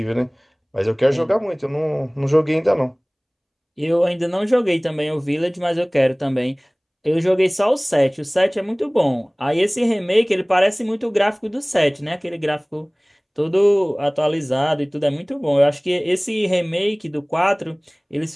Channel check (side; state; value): both; identical; correlation 1.00